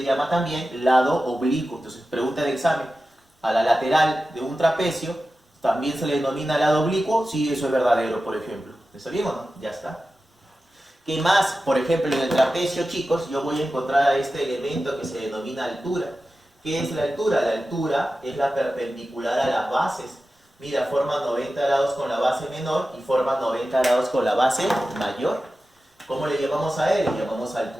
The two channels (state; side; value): normal; both; correlation 0.93